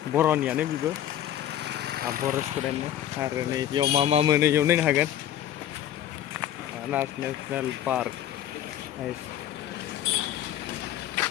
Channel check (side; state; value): right; quieter; 11.5 dB